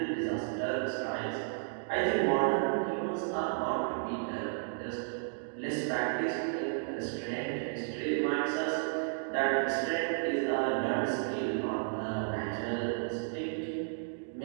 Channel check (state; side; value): silent; left; digital silence